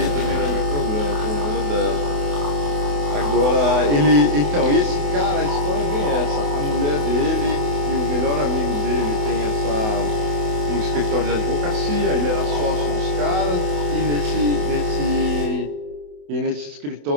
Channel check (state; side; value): late; left; 28 ms